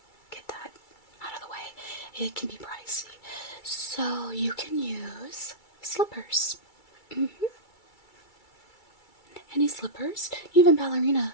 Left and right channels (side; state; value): right; late; 2.3 ms